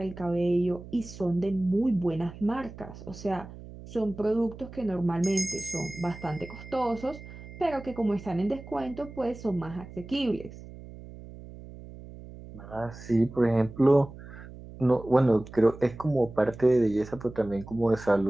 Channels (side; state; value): right; noise; hum, 15 dB below the sound